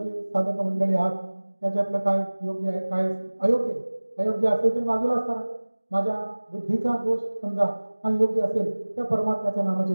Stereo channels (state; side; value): inverted; both; correlation -1.00